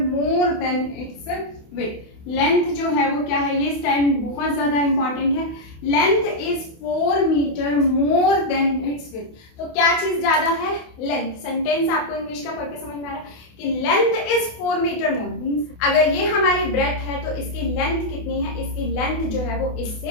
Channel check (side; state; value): right; late; 28 ms